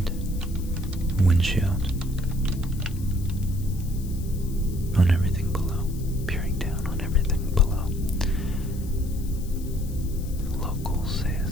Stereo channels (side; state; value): left; noise; hiss, 19 dB below the sound